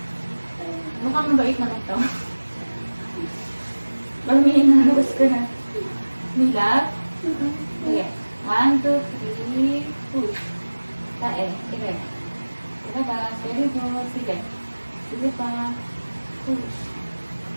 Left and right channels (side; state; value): both; inverted; correlation -1.00